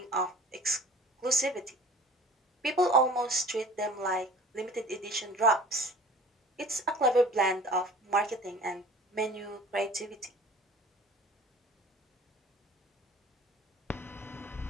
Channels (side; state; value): both; normal; correlation 0.46